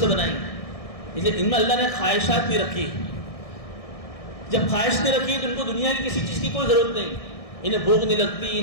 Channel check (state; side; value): late; right; 1.6 ms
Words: بنائی, اس لیے ان میں اللہ نے خواہشات بھی رکھی. جب خواہش نہیں رکھی تو ان کو دنیا کی کسی چیز کی کوئی ضرورت نہیں, انہیں بھوک نہیں لگتی,